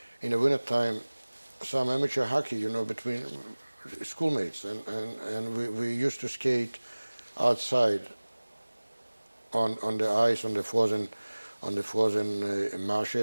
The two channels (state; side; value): inverted; both; correlation -1.00